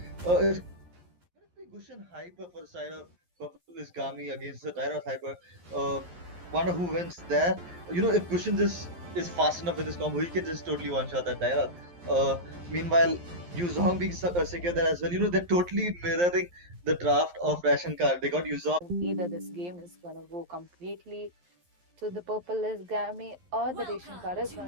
It's gonna be Gushin hyper for the side of Purple is Gami against the Dialog hyper. Uh, Wonder who wins there. If Gushin is fast enough with his combo, he can just totally one shot that Dialog. Meanwhile, Yuzong being secure there as well. They're totally mirroring the draft of Ration Card. They got Yuzong. Either this game is gonna go completely to the purple is Gami or the ration card is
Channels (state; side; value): late; left; 11 ms